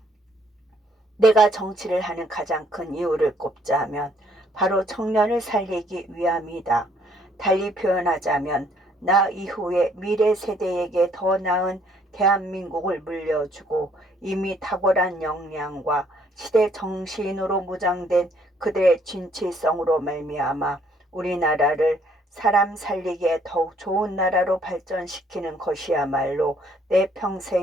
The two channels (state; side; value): normal; both; correlation 0.65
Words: 내가 정치를 하는 가장 큰 이유를 꼽자면 바로 청년을 살리기 위함이다. 달리 표현하자면 나 이후에 미래 세대에게 더 나은 대한민국을 물려주고 이미 탁월한 역량과 시대 정신으로 무장된 그들의 진취성으로 말미암아 우리나라를 사람 살리기에 더욱 좋은 나라로 발전시키는 것이야말로 내